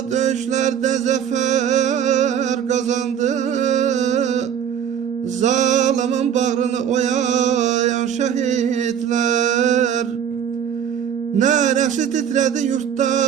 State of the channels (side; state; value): left; quieter; 8.8 dB